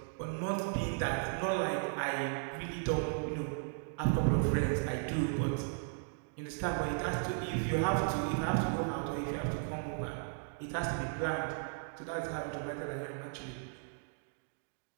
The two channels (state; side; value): silent; left; digital silence